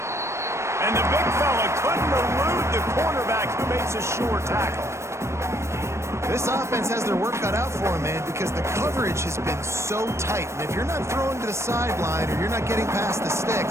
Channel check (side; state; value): left; late; 0.13 ms